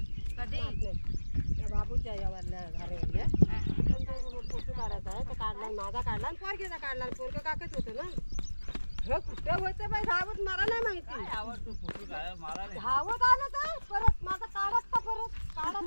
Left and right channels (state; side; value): inverted; both; correlation -1.00